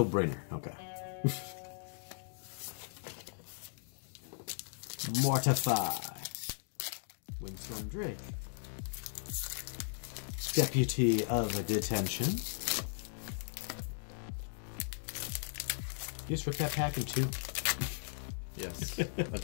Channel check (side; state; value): right; silent; digital silence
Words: Brainer, okay. Mortify. Windstorm Drake. Deputy of Detention. You just ripped that pack in 2? Yes. I